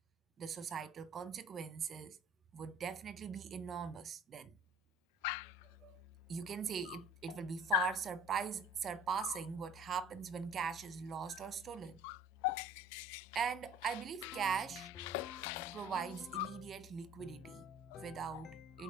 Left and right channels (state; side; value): normal; both; correlation 0.48